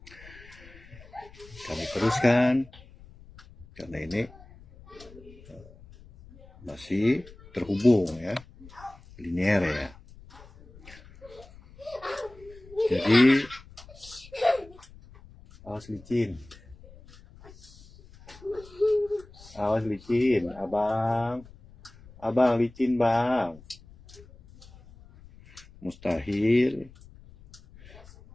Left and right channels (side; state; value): left; noise; rumble, 22 dB below the sound